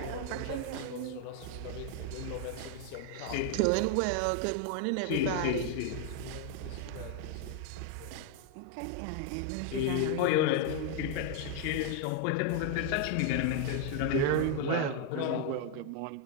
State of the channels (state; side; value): different; both; correlation 0.00